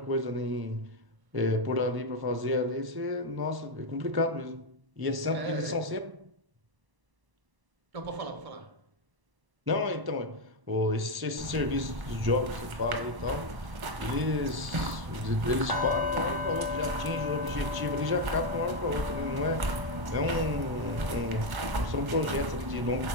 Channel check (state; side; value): late; left; 1.0 ms